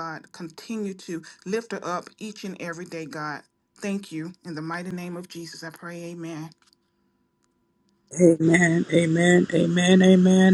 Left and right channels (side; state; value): both; identical; correlation 1.00